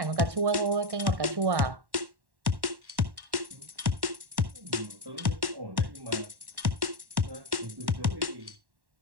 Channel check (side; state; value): left; late; 1.1 ms